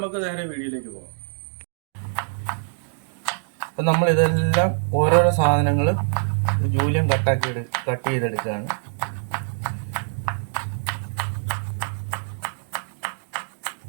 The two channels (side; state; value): left; silent; digital silence